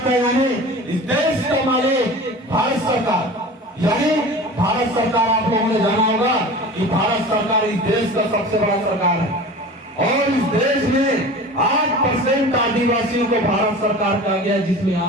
है, यानी इस देश का मालिक भारत सरकार। यानी भारत सरकार, आप लोगों ने जाना होगा कि भारत सरकार इस देश का सबसे बड़ा सरकार है और इस देश में 8% आदिवासियों को भारत सरकार कहा गया है, जिसमें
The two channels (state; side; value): normal; both; correlation 0.37